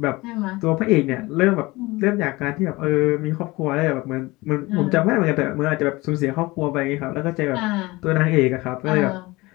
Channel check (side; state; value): right; quieter; 21.6 dB